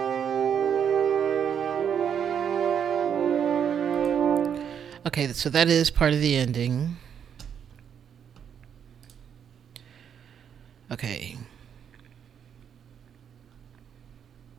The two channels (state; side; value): quieter; left; 8.2 dB